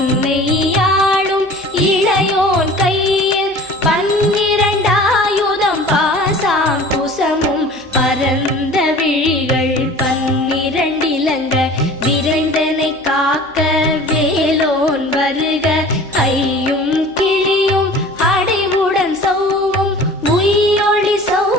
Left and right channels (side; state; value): right; noise; hum, 28 dB below the sound